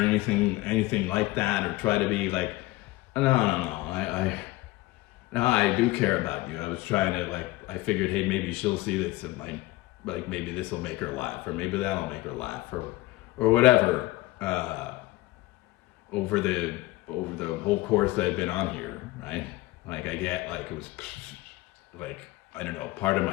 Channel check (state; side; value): quieter; right; 18.9 dB